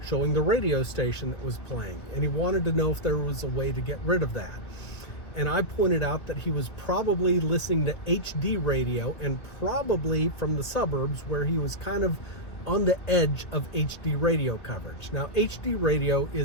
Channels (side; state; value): right; late; 2.1 ms